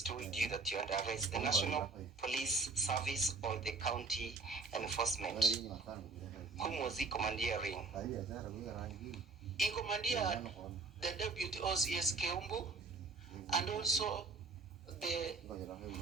told you that you are under arrest? The National Police Service or the county enforcement? Whom was he commandeering? He commandeered the Deputy OCS Keumbu and also the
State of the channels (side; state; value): left; quieter; 4.0 dB